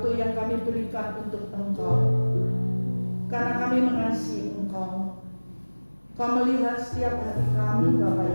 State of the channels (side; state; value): both; inverted; correlation -1.00